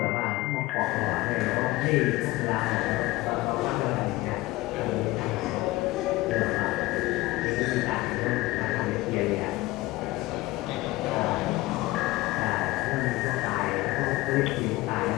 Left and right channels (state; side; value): quieter; right; 19.3 dB